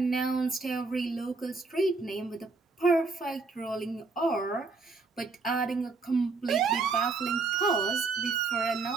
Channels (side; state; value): left; quieter; 4.1 dB